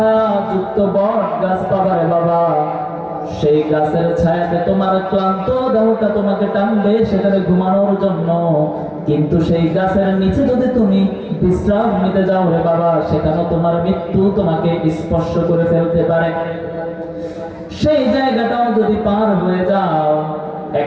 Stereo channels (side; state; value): both; identical; correlation 1.00